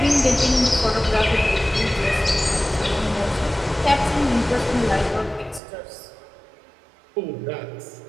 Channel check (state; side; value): drops out; left; at 5.6 s